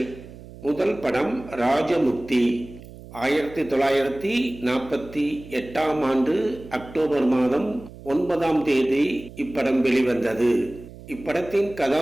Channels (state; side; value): noise; right; hum, 17 dB below the sound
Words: முதல் படம் ராஜமுக்தி. 1948ஆம் ஆண்டு அக்டோபர் மாதம் 9ஆம் தேதி இப்படம் வெளிவந்தது. இப்படத்தின்